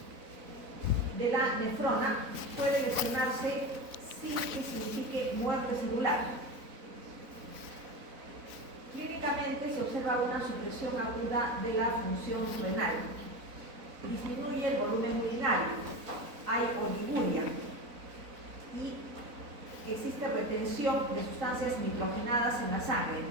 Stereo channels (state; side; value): late; left; 4.0 ms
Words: de la nefrona puede lesionarse sin que signifique muerte celular. Clínicamente se observa una supresión aguda de la función renal. Disminuye el volumen urinario, hay oliguria y existe retención de sustancias nitrogenadas en la sangre.